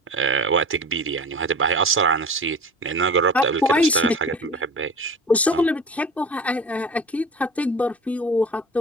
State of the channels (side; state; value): both; normal; correlation 0.37